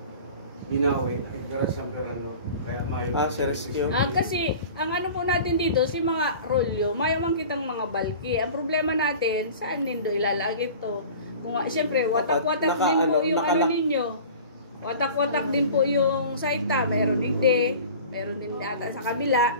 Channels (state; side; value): inverted; both; correlation -0.41